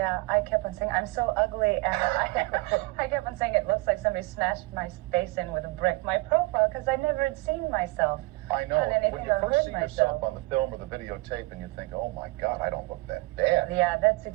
kept on saying, I'm so ugly, and I kept on saying it looks like somebody smashed my face in with a brick. My profile, because I never had seen myself. I know. On anything When you or first heard see myself. yourself on the film or the videotape and you think, oh my God, I don't look that bad. Yeah, that's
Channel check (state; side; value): quieter; left; 23.3 dB